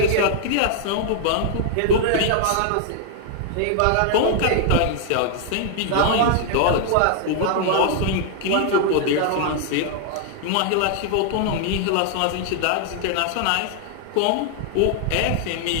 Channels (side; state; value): both; different; correlation 0.00